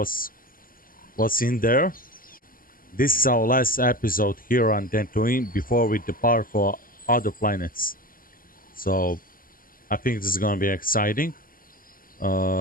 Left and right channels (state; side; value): late; right; 0.41 ms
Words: in there. This is our last episode here on Dantooine before we depart for other planets. So I think this is gonna be exciting.